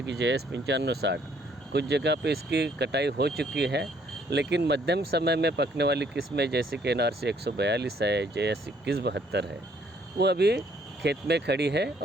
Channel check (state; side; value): normal; both; correlation 0.65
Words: कि JS 9560, कुछ जगह पे इसकी कटाई हो चुकी है, लेकिन मध्यम समय में पकने वाली किस्में जैसे कि NRC 142 है, JS 2172 है, वो अभी खेत में खड़ी है